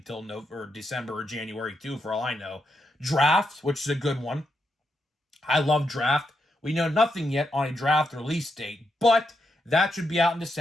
December or January too, for all I know. Draft, which is a good one. I love Draft. We know nothing yet on a Draft release date, but that should be out in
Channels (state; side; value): normal; both; correlation 0.82